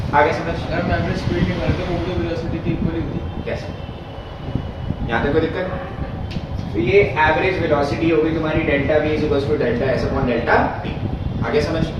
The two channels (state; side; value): identical; both; correlation 1.00